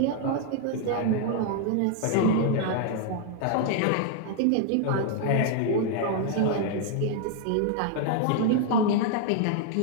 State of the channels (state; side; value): different; both; correlation 0.00